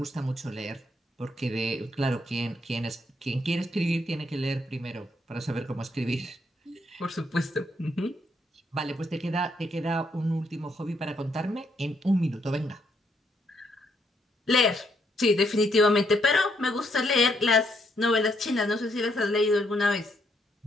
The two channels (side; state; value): both; normal; correlation 0.74